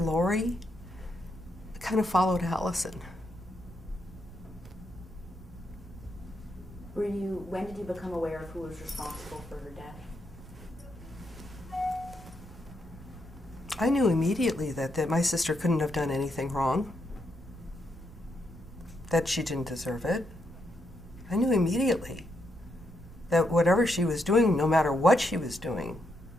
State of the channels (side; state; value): right; noise; rumble, 17 dB below the sound